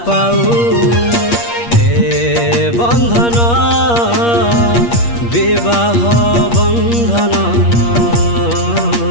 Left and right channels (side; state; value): right; late; 8.5 ms